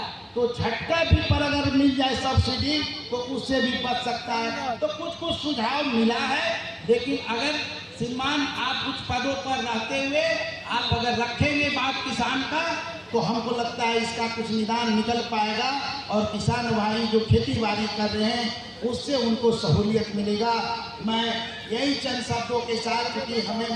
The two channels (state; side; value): identical; both; correlation 1.00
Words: तो झटका भी पर अगर मिल जाए सब्सिडी तो उससे भी बच सकता है। तो कुछ सुझाव मिला है, लेकिन अगर श्रीमान आप कुछ पदों पर रहते हुए आप अगर रखेंगे बात किसान का तो हमको लगता है इसका कुछ निदान निकल पाएगा और किसान भाई जो खेती बाड़ी कर रहे हैं उससे उनको सहूलियत मिलेगा। मैं यही चंद शब्दों के साथ, क्योंकि हमें